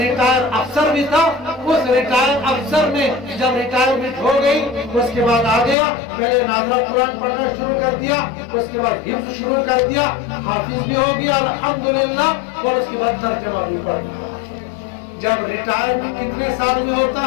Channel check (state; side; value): drops out; right; at 5.8 s